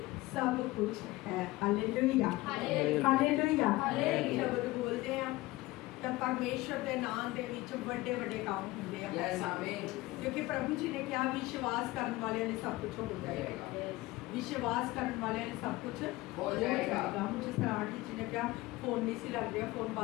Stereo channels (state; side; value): quieter; right; 19.5 dB